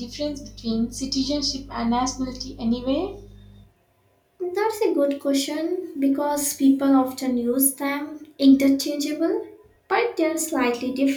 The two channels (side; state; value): both; identical; correlation 1.00